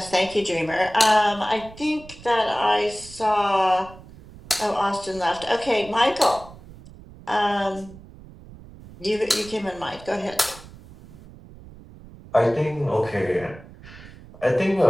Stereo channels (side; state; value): right; noise; rumble, 19 dB below the sound